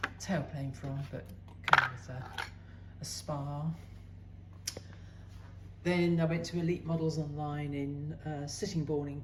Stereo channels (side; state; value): both; identical; correlation 1.00